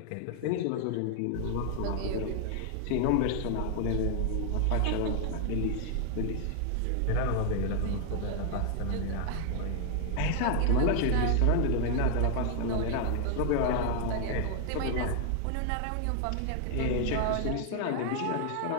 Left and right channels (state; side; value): different; both; correlation 0.00